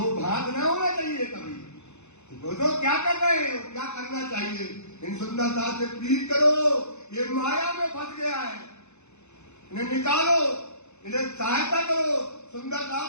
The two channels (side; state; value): right; late; 0.82 ms